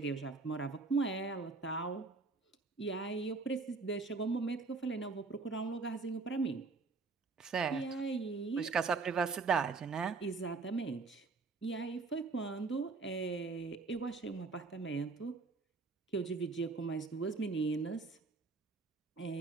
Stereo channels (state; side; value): quieter; left; 4.1 dB